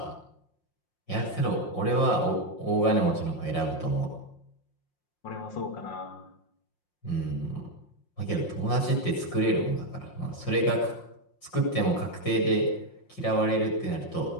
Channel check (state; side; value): late; right; 5.6 ms